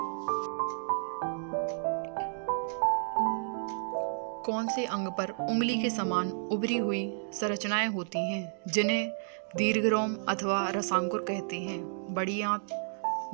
कौन से अंग पर उंगली के समान उभरी हुई संरचनाएं होती हैं जिन्हें दीर्घरोम अथवा रसांकुर कहते हैं? बड़ी आंत,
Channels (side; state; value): left; silent; digital silence